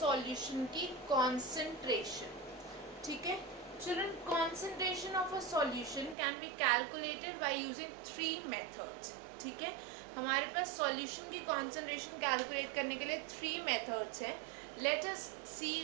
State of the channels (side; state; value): left; drops out; at 6.2 s